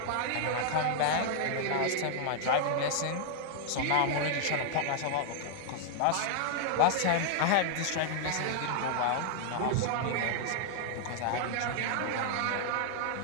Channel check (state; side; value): different; both; correlation -0.01